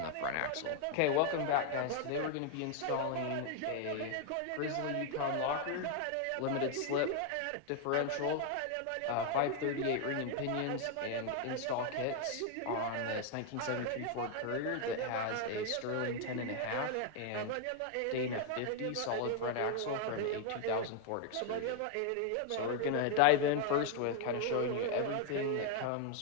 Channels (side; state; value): both; different; correlation 0.00